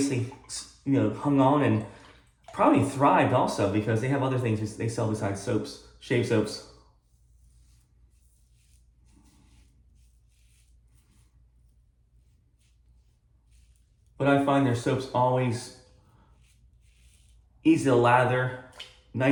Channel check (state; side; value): identical; both; correlation 1.00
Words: hung on and probably thrived also because they have other things they sell besides soaps, shave soaps. But I find their soaps always easy to lather,